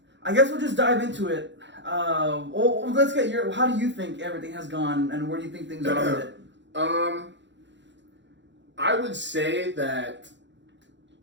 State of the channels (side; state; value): left; late; 0.53 ms